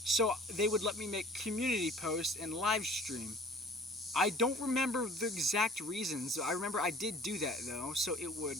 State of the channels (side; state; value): both; normal; correlation 0.49